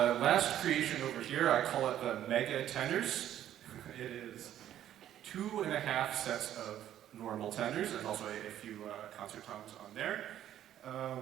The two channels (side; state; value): left; quieter; 11.5 dB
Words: last creation over here, I call it the Mega Tenors. It is 2.5 sets of normal tenors. There's also a few concert toms on there.